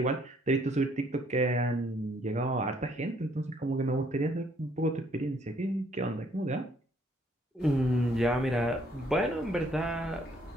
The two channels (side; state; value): both; normal; correlation 0.65